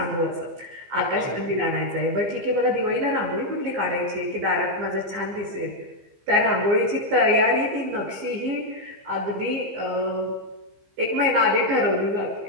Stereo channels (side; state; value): left; late; 15 ms